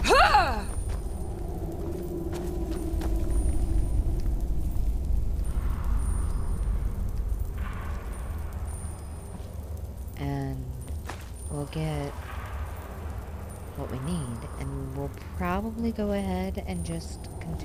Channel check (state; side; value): identical; both; correlation 1.00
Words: And we'll get what we need, and we'll probably go ahead and just